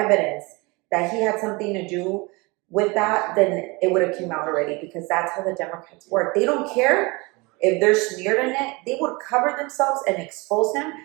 that he had something to do with that, then it would have come out already because that's how the Democrats work. They don't care if they're smeared in it. They would cover themselves and expose him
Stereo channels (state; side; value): quieter; left; 26.1 dB